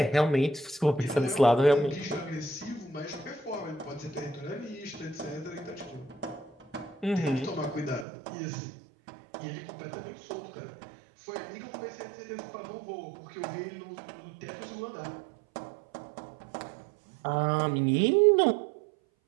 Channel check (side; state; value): left; drops out; at 8.1 s